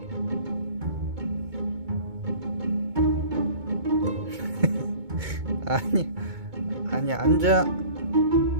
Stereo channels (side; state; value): left; late; 2.2 ms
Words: 아니 아니, 앉아.